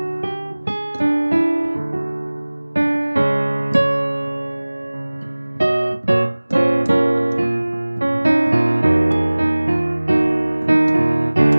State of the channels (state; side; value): inverted; both; correlation -1.00